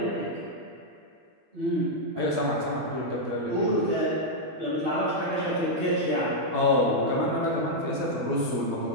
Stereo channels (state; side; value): late; left; 12 ms